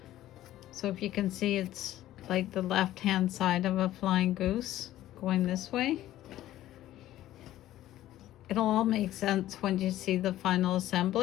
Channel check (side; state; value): right; quieter; 14.0 dB